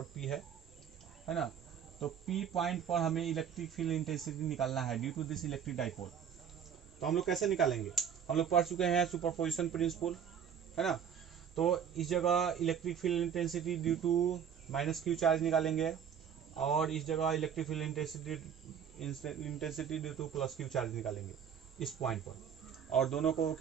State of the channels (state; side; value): quieter; left; 8.1 dB